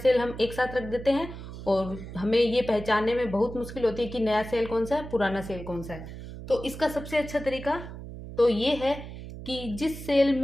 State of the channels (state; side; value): noise; right; hum, 11 dB below the sound